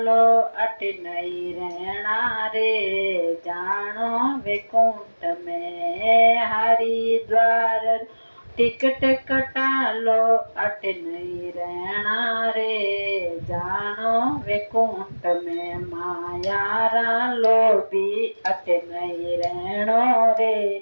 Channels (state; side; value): inverted; both; correlation -1.00